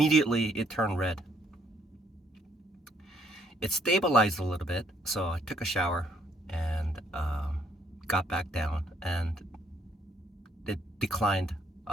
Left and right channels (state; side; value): normal; both; correlation 0.68